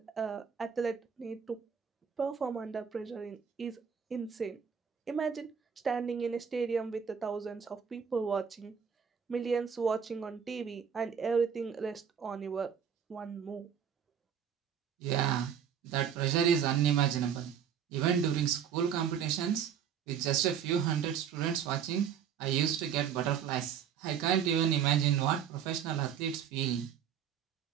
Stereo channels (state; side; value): quieter; left; 7.9 dB